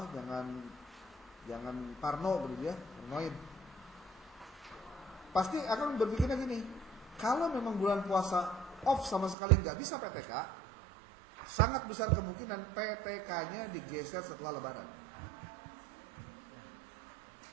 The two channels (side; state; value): left; drops out; at 9.3 s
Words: parno begitu ya, parnoin. Pasti akan berpikirnya gini, kalau memang bulan puasa off sama sekali nggak bisa PTK, sangat besar kemungkinan PTK-nya digeser setelah Lebaran.